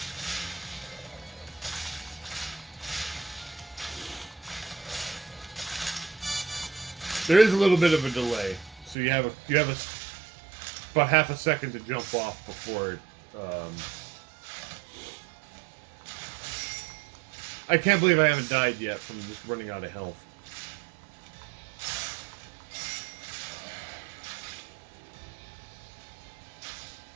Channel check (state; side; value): drops out; left; at 9.0 s